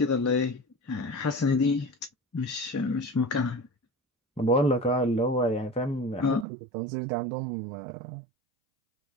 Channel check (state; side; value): drops out; left; at 6.5 s